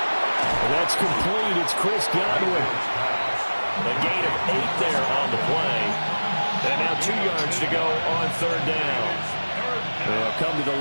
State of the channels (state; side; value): inverted; both; correlation -1.00